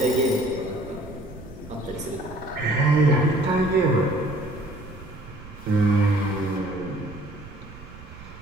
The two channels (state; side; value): noise; right; rumble, 17 dB below the sound